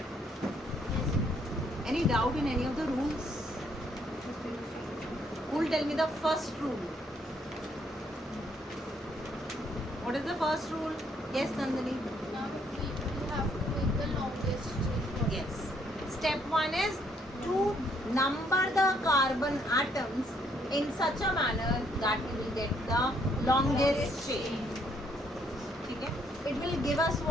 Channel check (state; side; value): normal; both; correlation 0.69